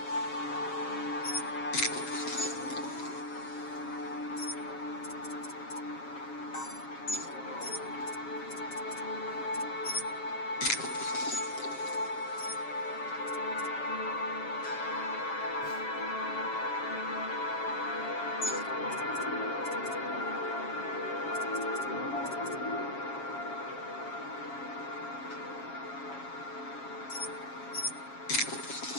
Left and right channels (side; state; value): right; late; 7.3 ms